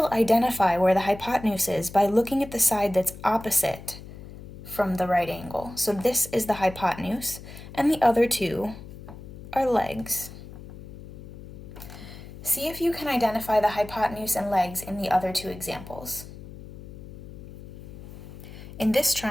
identify where the hypotenuse is by looking at the side that's opposite from the right angle. So this is the hypotenuse, and the other two are legs. See if you can identify the hypotenuse and legs in the other two examples. In this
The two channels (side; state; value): left; noise; hum, 15 dB below the sound